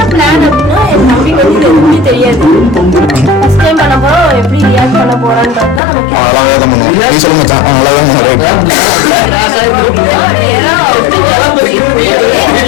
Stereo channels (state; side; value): drops out; right; at 5.8 s